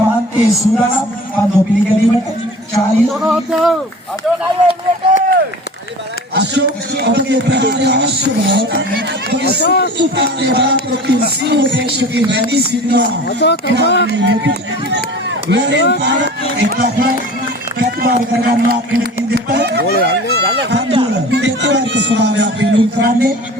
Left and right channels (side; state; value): both; normal; correlation 0.40